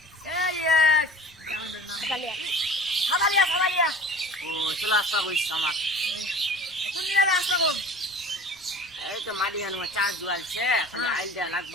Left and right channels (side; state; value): right; noise; rumble, 29 dB below the sound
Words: এই সাদালিয়া ও চলে আসবা বইস আমার কোন দিকে আসবো এই তো মাটি গান চার দুয়ালছে খালি আইল দেয়া